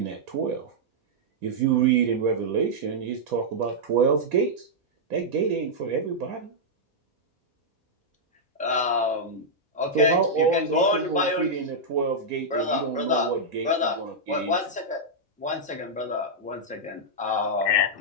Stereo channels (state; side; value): normal; both; correlation -0.07